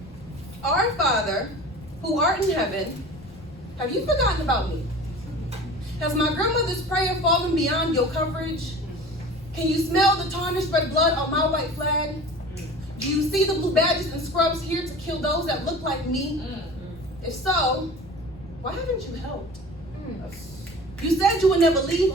Our Father, who art in heaven, have you forgotten about me? Has my grandmother's prayer fallen beyond your coverage? Can you smell the tarnished red blood on my white flag? Do you see the blue badges and scrubs here to kill those that look like me? If so, why haven't you helped? You said you would never leave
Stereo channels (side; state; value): left; noise; rumble, 22 dB below the sound